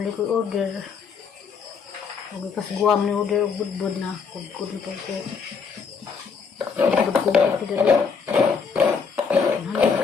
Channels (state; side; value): quieter; right; 5.7 dB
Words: ko order. Magkas guam ni order og budbud na. Kudkud na po ko. Kudkud na po dali. Hanap